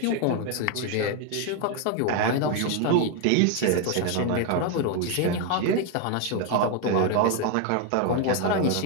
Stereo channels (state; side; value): different; both; correlation 0.01